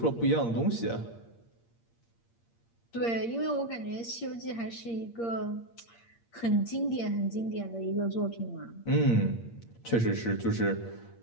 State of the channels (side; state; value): right; late; 8.6 ms